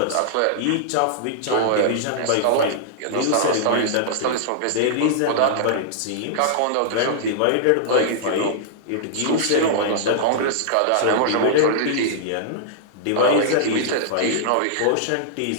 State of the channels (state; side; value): different; both; correlation -0.02